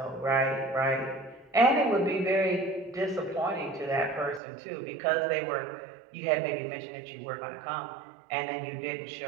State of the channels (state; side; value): drops out; left; at 4.4 s